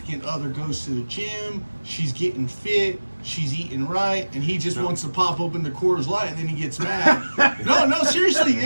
other goes to the gym, she's getting fit, she's eating right, and he just wants to pop open the Coors Light, and then he gets mad. no, seriously,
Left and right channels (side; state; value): both; inverted; correlation -1.00